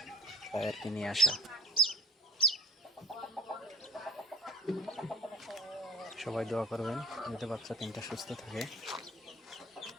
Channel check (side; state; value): both; normal; correlation 0.43